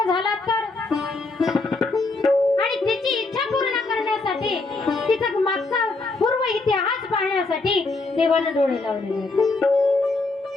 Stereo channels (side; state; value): right; quieter; 3.5 dB